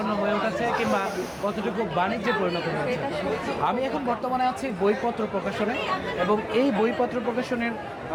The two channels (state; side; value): identical; both; correlation 1.00